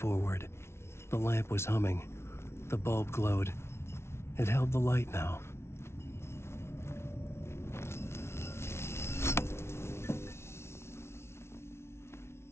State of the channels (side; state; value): right; late; 0.12 ms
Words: the lamp was humming. The bulb glowed. It held the light now.